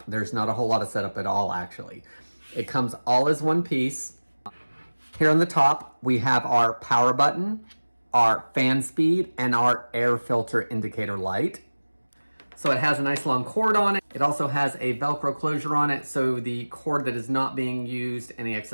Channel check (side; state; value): both; inverted; correlation -1.00